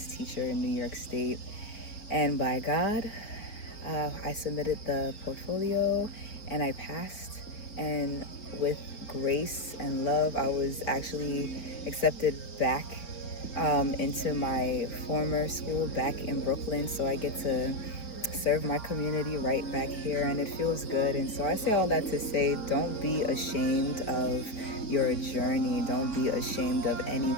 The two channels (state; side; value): late; right; 4.5 ms